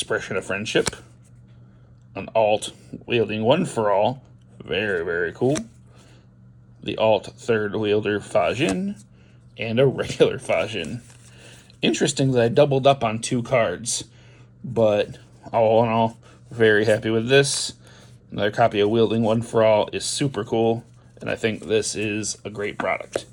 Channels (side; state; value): both; identical; correlation 1.00